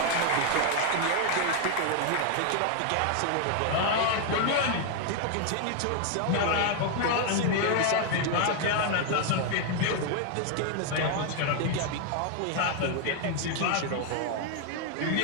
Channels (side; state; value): both; different; correlation 0.01